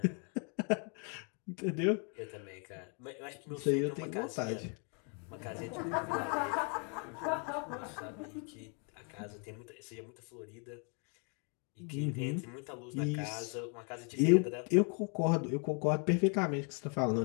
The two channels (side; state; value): right; quieter; 38.4 dB